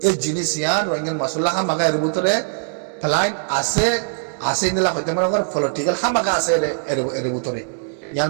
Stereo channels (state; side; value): silent; left; digital silence